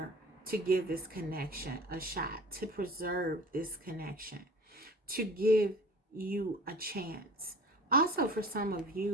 to give this connection a shot, to preserve this connection, to give you a chance. Also, for some of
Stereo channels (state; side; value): normal; both; correlation 0.42